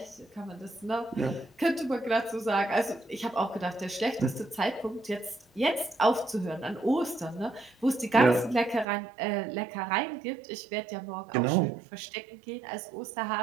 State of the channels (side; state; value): left; drops out; at 8.8 s